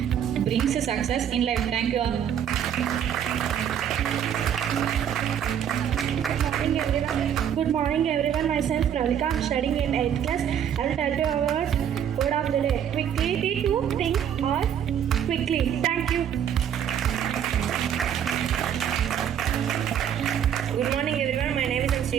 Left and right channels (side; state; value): left; quieter; 9.2 dB